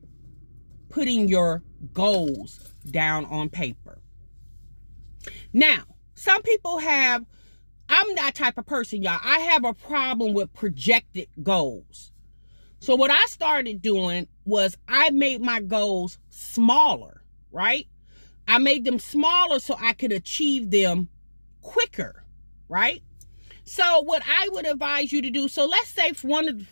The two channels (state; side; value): inverted; both; correlation -1.00